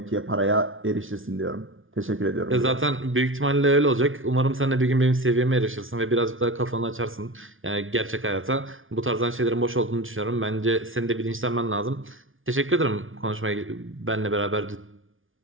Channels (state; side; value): late; left; 0.58 ms